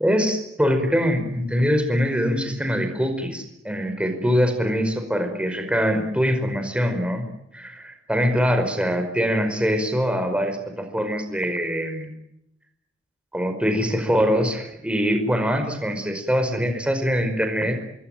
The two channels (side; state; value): both; normal; correlation 0.80